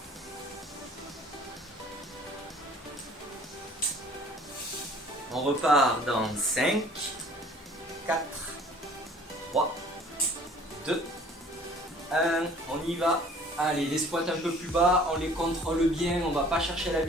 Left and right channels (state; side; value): normal; both; correlation 0.52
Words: On repart dans 5, 4, 3, 2, 1. On y va. Allez, les squats un peu plus bas, on les contrôle bien, on ne va pas chercher la